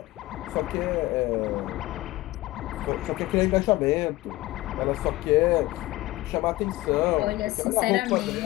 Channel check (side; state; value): right; quieter; 18.5 dB